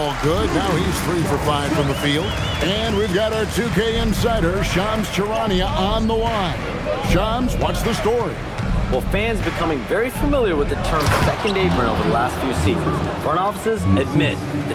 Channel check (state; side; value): identical; both; correlation 1.00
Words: good. Now he's 3 for 5 from the field. And we've got our 2K insider, Shams Charania, on the line. Shams, what's the story? Well, fans becoming very familiar with the term second apron over the last few seasons. Front offices admit